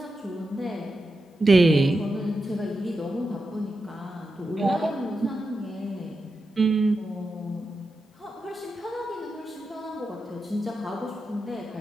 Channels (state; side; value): normal; both; correlation 0.89